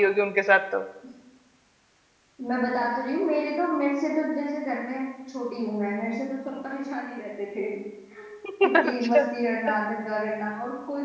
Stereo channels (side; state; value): both; identical; correlation 1.00